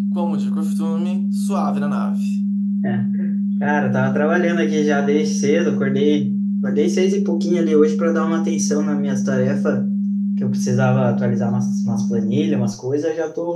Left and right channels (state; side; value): identical; both; correlation 1.00